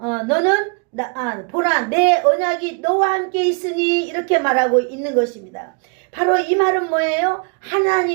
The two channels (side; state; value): left; quieter; 38.4 dB